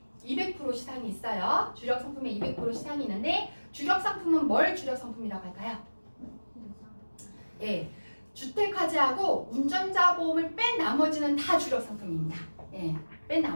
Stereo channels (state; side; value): inverted; both; correlation -1.00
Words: 200% 시상이 있어요. 주력 상품에 200% 시상이 있는데 주력 상품은 뭘 주력 상품이라고 할까요? 예, 주택화재하고 운전자 보험을 뺀 나머지는 다 주력 상품입니다. 예, 뺀